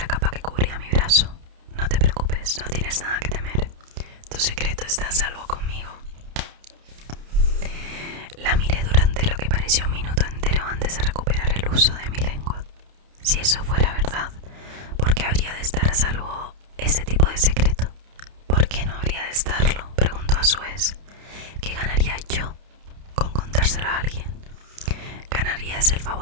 capa que cubría mi brazo. «No te preocupes, no tienes nada que temer. Tu secreto está a salvo conmigo». La miré durante lo que pareció un minuto entero antes de recuperar el uso de mi lengua. Si eso fuera verdad, ¿por qué habría de estar a salvo ese tipo de secreto? ¿Por qué no habría de estarlo?, preguntó a su vez. ¿Qué ganaría yo con contárselo a alguien? ¿Ganarías el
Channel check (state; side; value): late; left; 30 ms